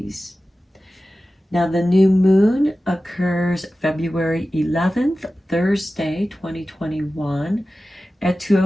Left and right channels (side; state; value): both; normal; correlation 0.95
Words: Now, the new moon occurs February 11th, Thursday, 2021 at